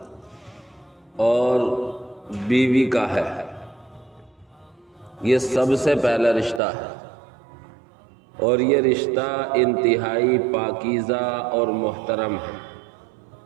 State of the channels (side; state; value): left; drops out; at 6.6 s